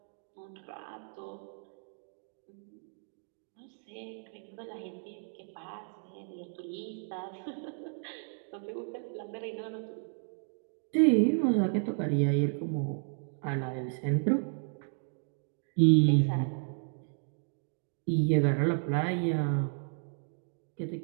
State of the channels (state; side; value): silent; left; 56 dB below the other